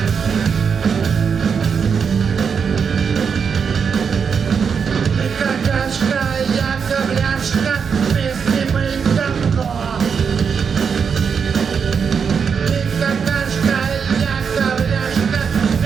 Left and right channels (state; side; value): quieter; left; 6.4 dB